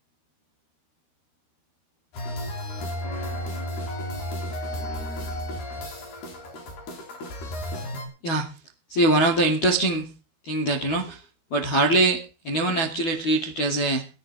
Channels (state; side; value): late; right; 12 ms